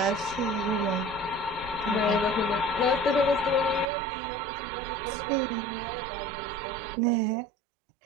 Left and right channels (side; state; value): left; drops out; at 3.9 s